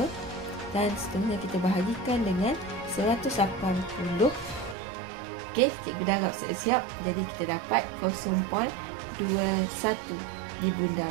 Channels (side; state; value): left; drops out; at 4.8 s